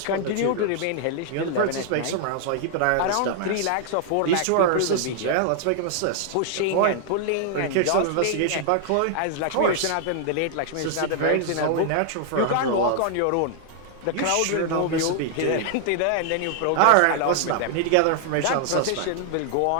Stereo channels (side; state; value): both; different; correlation 0.00